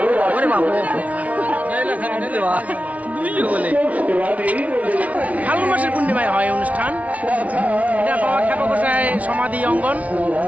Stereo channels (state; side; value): late; left; 0.068 ms